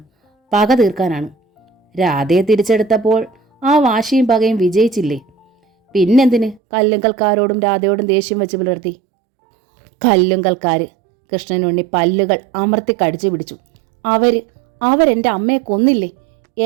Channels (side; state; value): left; drops out; at 6.6 s